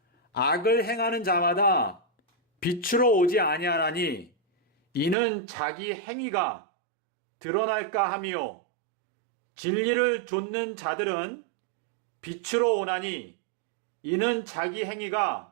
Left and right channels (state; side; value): drops out; left; at 5.2 s